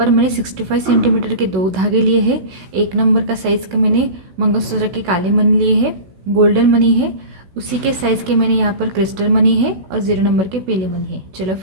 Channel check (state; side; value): late; left; 16 ms